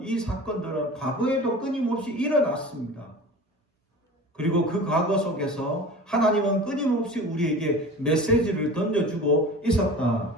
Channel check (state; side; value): normal; both; correlation 0.37